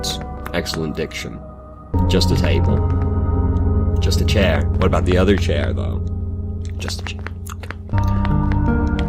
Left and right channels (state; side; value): identical; both; correlation 1.00